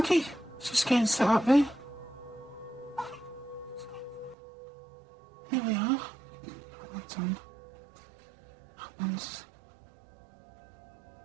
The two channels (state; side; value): drops out; left; at 4.4 s